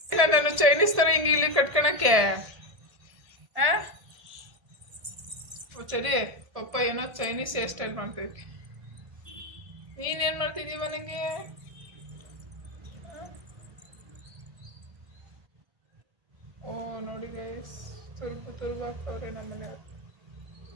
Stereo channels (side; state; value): left; late; 1.7 ms